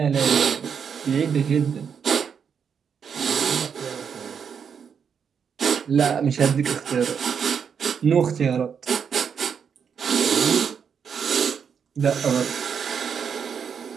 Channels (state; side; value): quieter; left; 7.0 dB